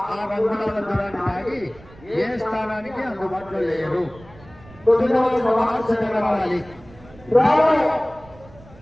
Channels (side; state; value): right; noise; rumble, 22 dB below the sound